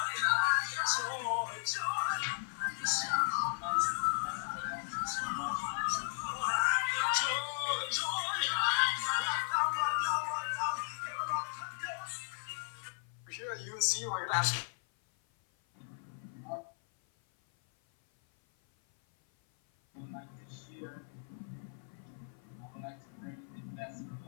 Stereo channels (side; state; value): right; silent; 54 dB below the other